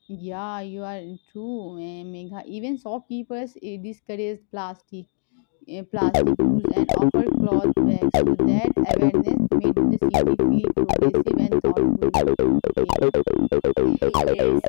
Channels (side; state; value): right; silent; digital silence